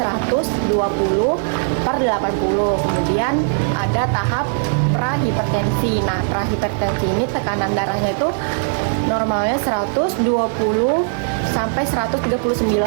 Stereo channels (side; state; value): left; silent; 67 dB below the other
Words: Kemudian ada tahap prahipertensi. Nah, prahipertensi ini tekanan darahnya itu normalnya 120 sampai